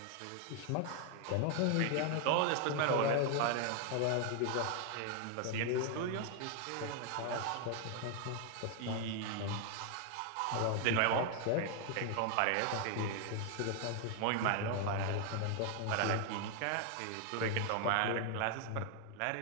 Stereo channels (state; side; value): different; both; correlation 0.00